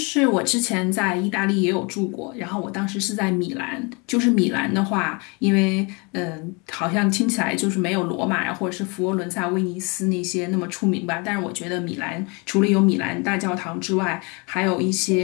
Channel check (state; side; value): quieter; right; 30.4 dB